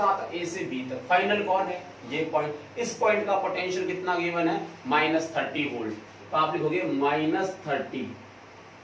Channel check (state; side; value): identical; both; correlation 1.00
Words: तक, A से B तक। फाइनल कौन है, ये पॉइंट। इस पॉइंट का पोटेंशियल कितना गिवन है, -30 वोल्ट, तो आप लिखोगे -30,